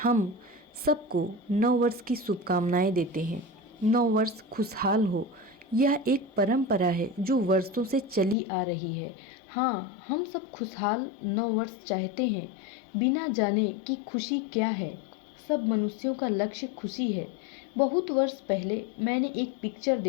हम सबको नौ वर्ष की शुभकामनाएं देते हैं। नौ वर्ष खुशहाल हो, यह एक परंपरा है जो वर्षों से चली आ रही है। हाँ, हम सब खुशहाल नौ वर्ष चाहते हैं, बिना जाने कि खुशी क्या है। सब मनुष्यों का लक्ष्य खुशी है। बहुत वर्ष पहले मैंने एक पिक्चर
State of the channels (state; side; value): drops out; right; at 8.3 s